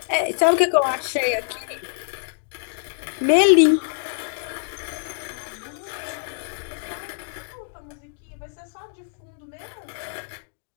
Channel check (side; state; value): right; silent; digital silence